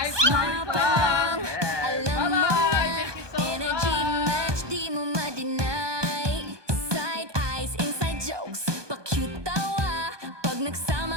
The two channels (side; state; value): left; late; 1.2 ms